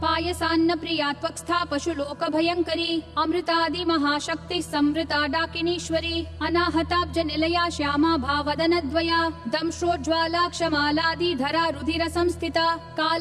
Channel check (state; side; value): identical; both; correlation 1.00